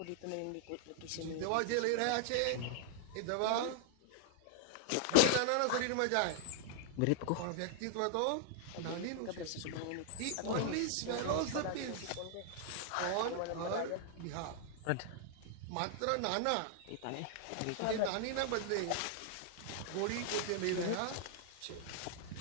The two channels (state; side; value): different; both; correlation -0.01